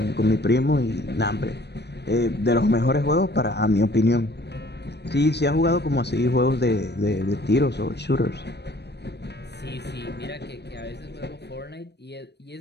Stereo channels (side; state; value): right; late; 0.49 ms